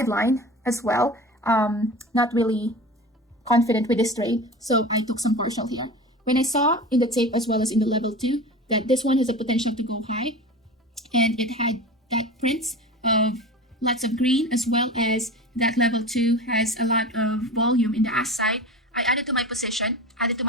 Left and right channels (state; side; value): normal; both; correlation 0.32